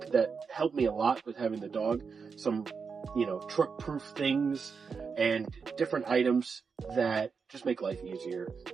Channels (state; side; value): quieter; left; 5.5 dB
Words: that helped me a lot with having the dog. Some, truck-proof things and different items that just make life easier